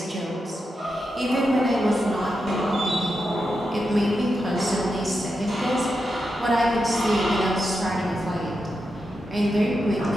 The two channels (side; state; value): both; normal; correlation 0.87